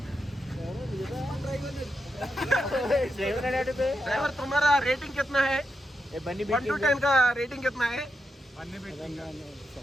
ड्राइवर तुम्हारा रेटिंग कितना है? 1 to 10 का रेटिंग कितना है?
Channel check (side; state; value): both; normal; correlation 0.85